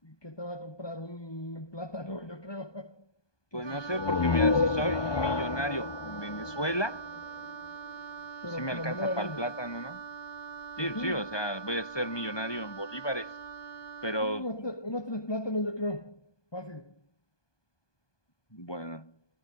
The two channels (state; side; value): late; right; 1.2 ms